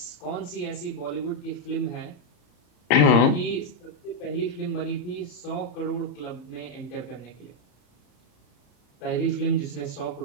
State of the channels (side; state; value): right; late; 34 ms